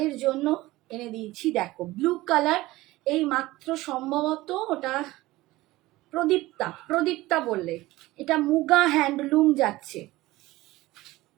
জন্য এনে দিয়েছি, দেখো ব্লু কালার, এই মাত্র সম্ভবত ওটা প্রদীপ্তা, প্রদীপ্তা বললে, এটা মুগা হ্যান্ডলুম যাচ্ছে,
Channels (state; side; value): quieter; left; 18.5 dB